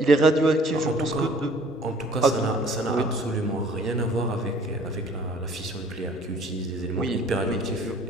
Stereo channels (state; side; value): normal; both; correlation 0.54